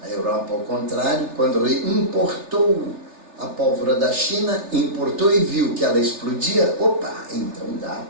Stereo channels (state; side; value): late; left; 3.3 ms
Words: A Europa, ao contrário, quando importou a pólvora da China, importou e viu que ela explodia, então